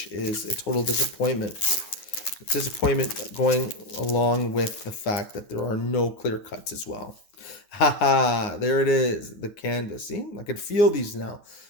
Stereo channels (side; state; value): right; late; 9.7 ms